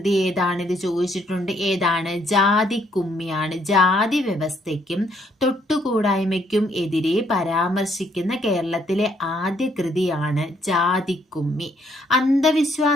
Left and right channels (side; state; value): both; normal; correlation 0.70